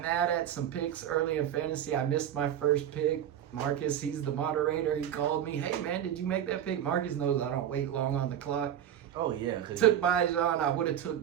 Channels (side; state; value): left; quieter; 10.3 dB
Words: mad at some picks early in fantasy. I missed my first pick. Marcus, he's the moderator. He called me, hey man, did you make that pick? Marcus knows I don't wait long on the clock. Oh, yeah. Took Bijan. I would have took